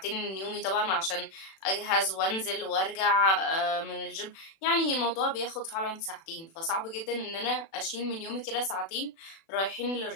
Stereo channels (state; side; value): late; right; 36 ms